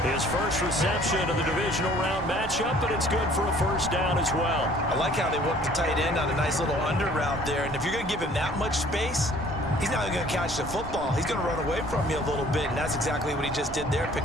His first reception of the divisional round matchup, but it's good for a first down as well. I like how they work the tight end on a nice little under route there. And if you're going to give him that much space, he's not going to catch the football. He's going to run away from you a little bit, and that's exactly what he just did there,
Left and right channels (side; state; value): right; noise; rumble, 13 dB below the sound